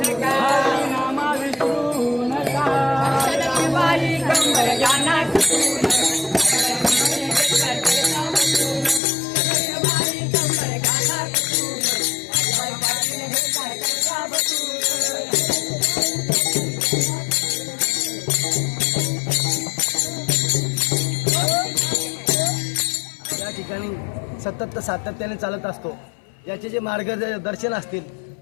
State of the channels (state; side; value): drops out; right; at 9.0 s